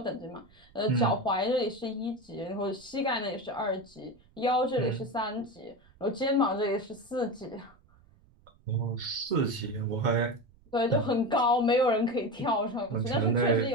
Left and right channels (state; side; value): noise; right; rumble, 29 dB below the sound